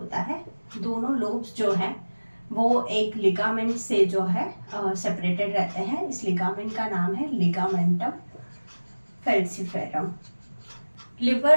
है। दोनों लोब्स जो हैं वो एक लिगामेंट से जो है सेपरेटेड रहते हैं। इस लिगामेंट का नाम है लिगामेंटम फैल्सिफेरम।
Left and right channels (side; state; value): both; inverted; correlation -1.00